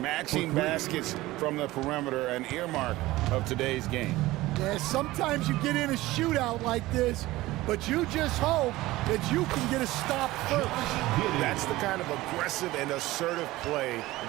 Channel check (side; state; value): left; quieter; 18.1 dB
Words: baskets from the perimeter, an earmark of today's game. Yeah, sometimes you get in a shootout like this, but you just hope that you can get a stop first. That's the kind of aggressive and assertive play